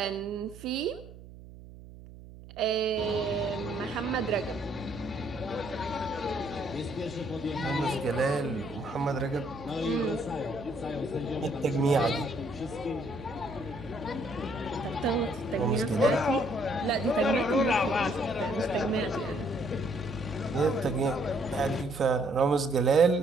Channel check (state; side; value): noise; right; hum, 17 dB below the sound